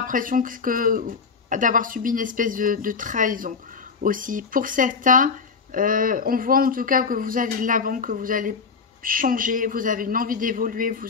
d'avoir subi une espèce de trahison aussi. Pour certains, on voit en tout cas que vous allez de l'avant, que vous allez changer, vous avez une envie d'évoluer,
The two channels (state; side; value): quieter; right; 5.2 dB